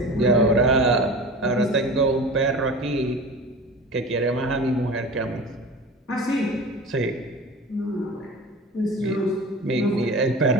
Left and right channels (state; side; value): normal; both; correlation 0.35